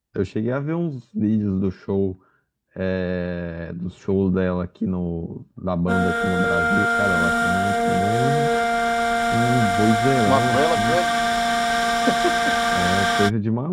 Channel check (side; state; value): both; identical; correlation 1.00